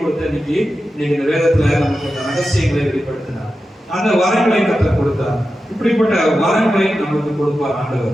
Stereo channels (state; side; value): normal; both; correlation 0.92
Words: இன்னைக்கு இந்த வேதத்துல நமக்கு அந்த ரகசியங்களை வெளிப்படுத்தினார். அந்த வரங்களை கர்த்தர் கொடுத்தார். இப்படிப்பட்ட வரங்களை நமக்கு கொடுப்பார்